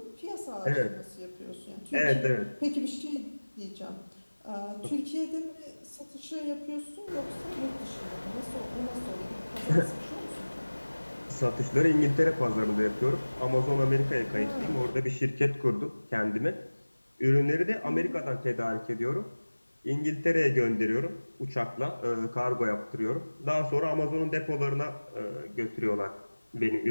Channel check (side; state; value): both; inverted; correlation -1.00